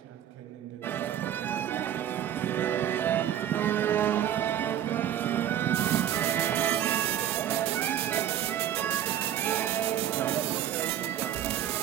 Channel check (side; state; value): left; quieter; 10.9 dB